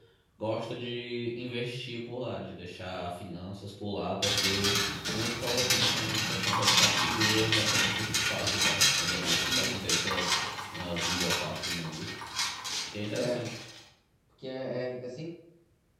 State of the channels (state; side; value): identical; both; correlation 1.00